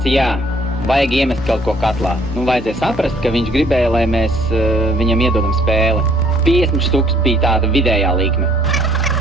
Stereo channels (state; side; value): normal; both; correlation 0.61